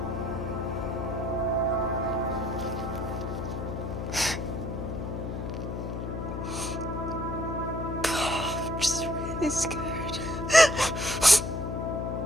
I'm just really scared.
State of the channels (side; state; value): left; noise; hum, 4 dB below the sound